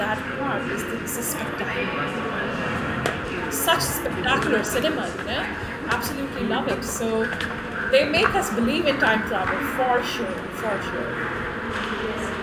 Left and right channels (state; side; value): identical; both; correlation 1.00